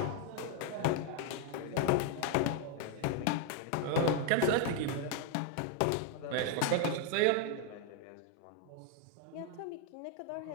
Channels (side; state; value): both; different; correlation 0.00